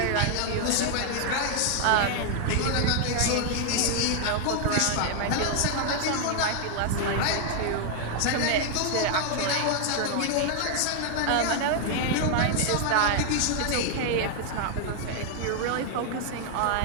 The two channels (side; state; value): both; different; correlation 0.00